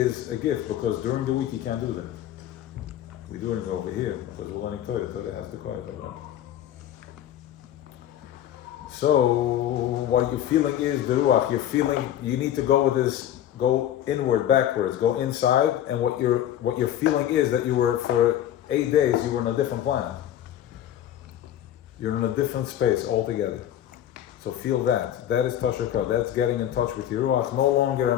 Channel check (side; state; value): right; quieter; 11.5 dB